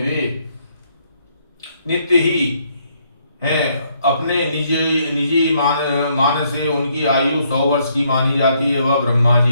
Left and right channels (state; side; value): inverted; both; correlation -0.71